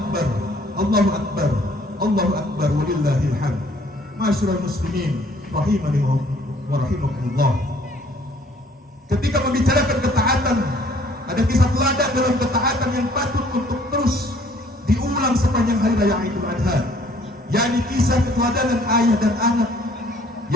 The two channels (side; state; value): both; normal; correlation 0.59